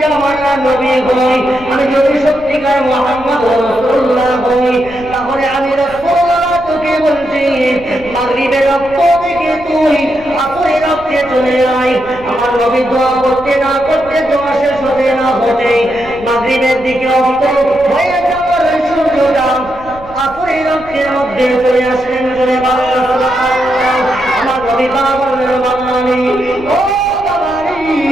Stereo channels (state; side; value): noise; left; rumble, 19 dB below the sound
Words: জামানার নবী হই, আমি যদি সত্যিকার মুহাম্মদ রাসূলুল্লাহ হই, তাহলে আমি রাসূলুল্লাহ তোকে বলছি, মাগরিবের রক্ত থেকে তুই আসরের রক্তে চলে আয়। আমার নবী দোয়া করতে না করতে, দোয়া শেষ হতে না হতে মাগরিবের দিকে অস্ত হয়ে যাওয়ার সূর্যটা আসরের রক্তের মধ্যে চলে আসলেন। জোরে বলেন সুবহানাল্লাহ। আমার নবী বললেন, বাবা আলী, ও বাবা আলী,